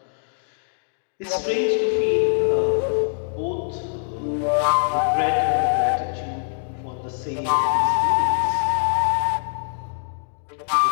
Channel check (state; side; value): silent; right; digital silence